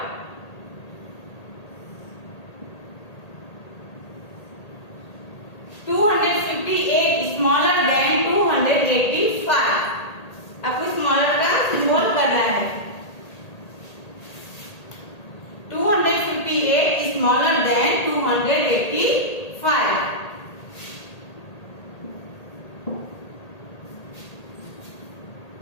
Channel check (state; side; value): late; right; 1.8 ms